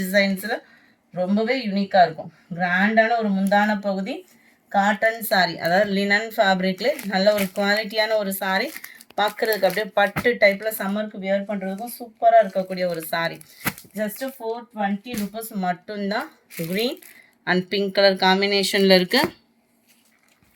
டிசைன்ஸில் ரொம்பவே யூனிக்காக இருக்கும். கிராண்டான ஒரு முந்தான பகுதி. காட்டன் சாரீ, அதாவது லினன் ஃபேப்ரிக்ல நல்ல ஒரு குவாலிட்டியான ஒரு சாரீ. பார்க்குறதுக்கு அப்படியே பட்டு டைப்பில் சம்மருக்கு வியர் பண்ணுறதுக்கும் சூப்பராக இருக்கக்கூடிய ஒரு சாரீ. ஜஸ்ட்டு 420 ருபீஸ் மட்டும்தான். க்ரீன் அண்ட் பிங்க் கலர் காம்பினேஷனில் இருக்குது.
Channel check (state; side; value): identical; both; correlation 1.00